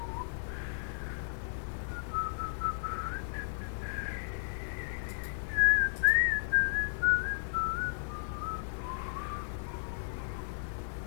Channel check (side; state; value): right; silent; digital silence